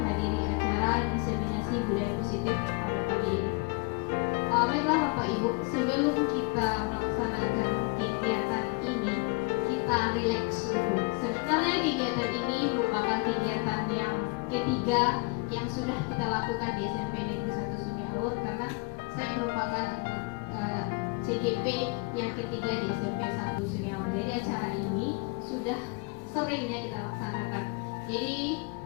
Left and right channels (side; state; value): right; quieter; 29.7 dB